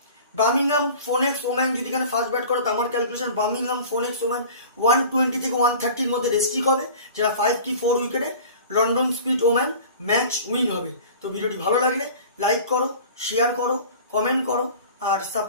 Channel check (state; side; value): inverted; both; correlation -0.41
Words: বার্মিংহাম ফোনেক্স ওম্যান যদি এখানে ফার্স্ট ব্যাট করে, তো আমার ক্যালকুলেশন বার্মিংহাম ফোনেক্স ওম্যান 120 থেকে 130 মধ্যে রেস্ট্রিক হবে, যেটা 5 কি 4 উইকেটে London Spirit woman match win হবে। তো ভিডিওটি ভালো লাগলে লাইক করো, শেয়ার করো, কমেন্ট করো আর